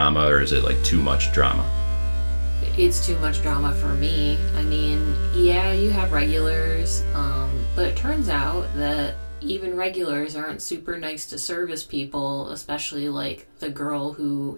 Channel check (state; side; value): inverted; both; correlation -1.00